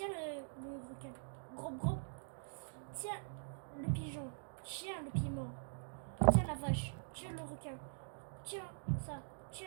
le requin. Gros. Tiens le pigeon. Tiens le piment. Tiens la vache. Tiens le requin. Tiens ça.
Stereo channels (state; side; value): silent; left; digital silence